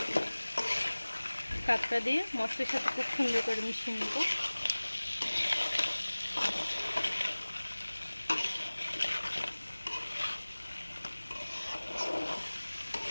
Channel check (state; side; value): inverted; both; correlation -1.00